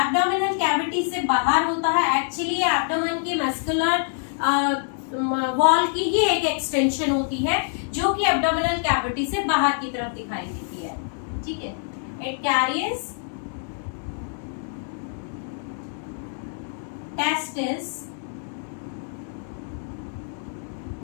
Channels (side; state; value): right; silent; digital silence